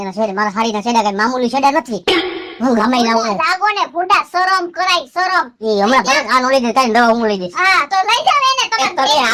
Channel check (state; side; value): identical; both; correlation 1.00